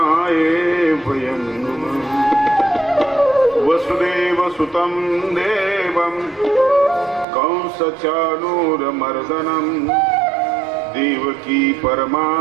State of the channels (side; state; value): left; drops out; at 7.2 s